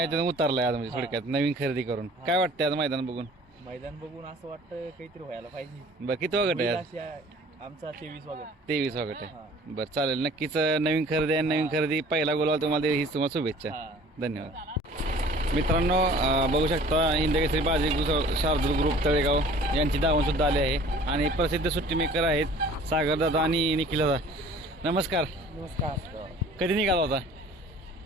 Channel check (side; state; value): both; normal; correlation 0.49